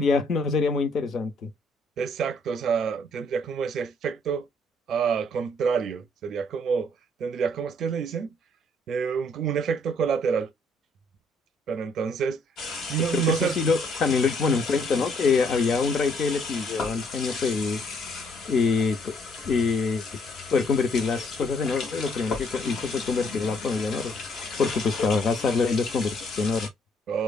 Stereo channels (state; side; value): normal; both; correlation 0.67